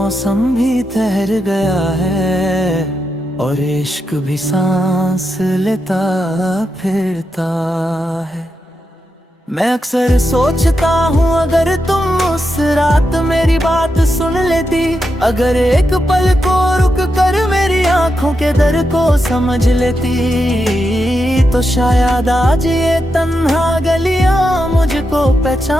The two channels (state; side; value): normal; both; correlation 0.86